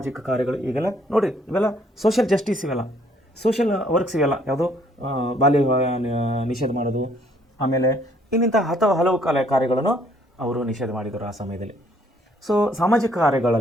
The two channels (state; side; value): normal; both; correlation 0.64